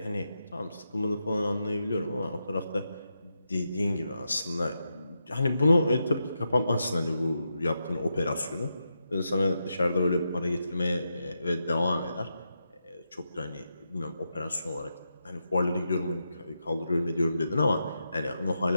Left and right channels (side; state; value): both; inverted; correlation -0.86